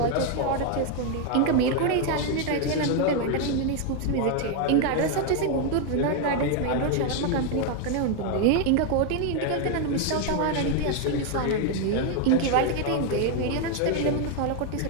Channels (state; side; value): different; both; correlation 0.01